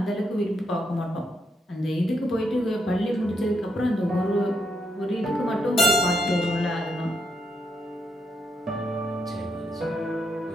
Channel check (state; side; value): normal; both; correlation 0.79